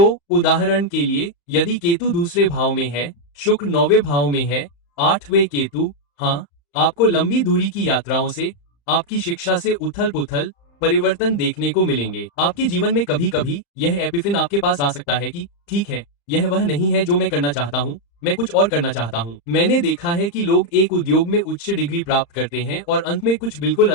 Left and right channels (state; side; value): late; right; 35 ms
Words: उदाहरण के लिए, यदि केतु दूसरे भाव में है, शुक्र 9वें भाव में है, 8वें केतु, हाँ, आपको लंबी दूरी की यात्राओं से, आपकी शिक्षा से उथल पुथल, परिवर्तन देखने को मिलेंगे। आपके जीवन में कभी कभी यह एपिफिन आपके पास आ सकता है कि ठीक है, यह वह नहीं है जो मैं करना चाहता हूँ, मैं कुछ और करना चाहता हूँ। मैंने देखा है कि लोग एक उद्योग में उच्च डिग्री प्राप्त करते हैं और अंत में कुछ बिल्कुल